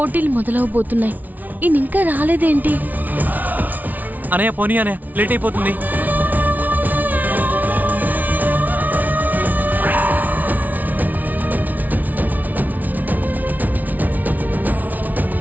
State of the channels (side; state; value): left; late; 0.078 ms